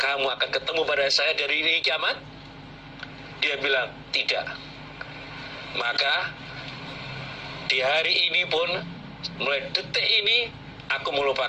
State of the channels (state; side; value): identical; both; correlation 1.00